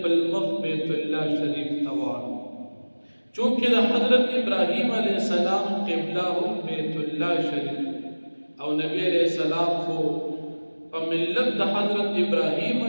مخ بیت الله شریف ته واړوه. چونکه د حضرت ابراهیم علیہ السلام قبله هم بیت الله شریف او نبی علیہ السلام خو په ملت د حضرت ابراهیم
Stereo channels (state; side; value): inverted; both; correlation -1.00